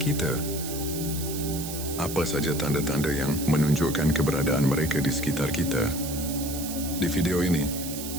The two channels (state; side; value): noise; right; hiss, 8 dB below the sound